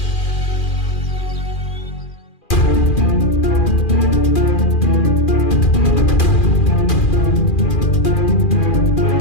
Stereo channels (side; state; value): right; late; 2.4 ms